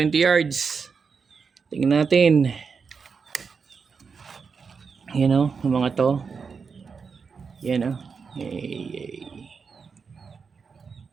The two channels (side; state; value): left; quieter; 5.5 dB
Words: yards. Tingnan natin. Yung mga to. Yan oh. Yay.